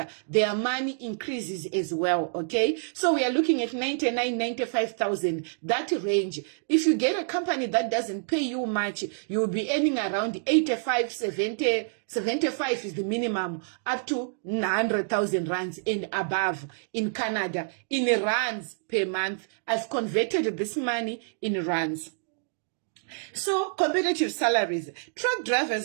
their money increases as well. Okay, so we are looking at 99, 95,000, that range. If you get a company that doesn't pay you much, you'll be earning around 85, 70, 75 is the minimum, up to 100,000 rands and above in Canada, in rands per month. I've converted this money in rands. So competitive salaries. Truck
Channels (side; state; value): left; silent; digital silence